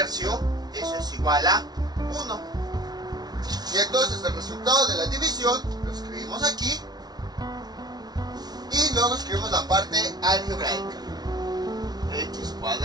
eso es igual a 1. Y entonces el resultado de la división lo escribimos aquí. Y luego escribimos la parte algebraica. X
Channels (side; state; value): left; late; 0.19 ms